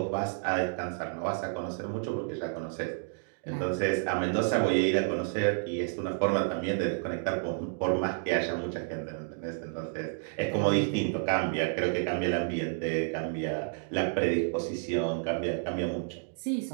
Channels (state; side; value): silent; left; digital silence